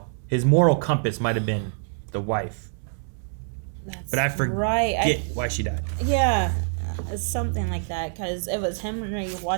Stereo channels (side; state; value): left; silent; 59 dB below the other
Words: his moral compass might have been the wife. That's but I forget right. why she died. Yeah, it's something like that because it was Henry